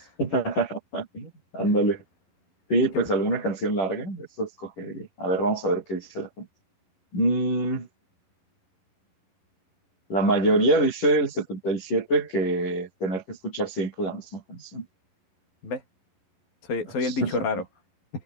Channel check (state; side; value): late; right; 11 ms